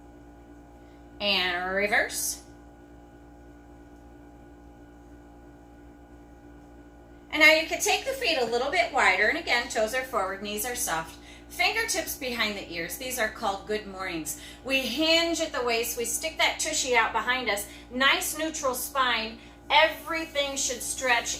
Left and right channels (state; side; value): identical; both; correlation 1.00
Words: And reverse. And now you can take the feet a little bit wider. And again, toes are forward, knees are soft. Fingertips behind the ears. These are called good mornings. We hinge at the waist. We stick that tushy out behind us. Nice neutral spine. Everything should